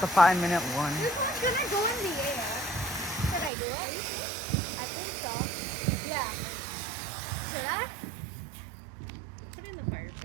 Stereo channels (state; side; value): drops out; left; at 3.5 s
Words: the 5-minute one. This one's gonna go in the air. Should I do it? I think so. Yeah. Should I? Put it in the fire